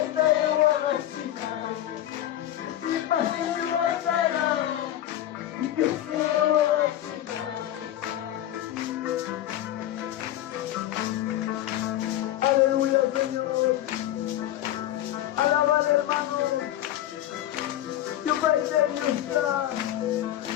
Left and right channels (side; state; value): right; quieter; 12.9 dB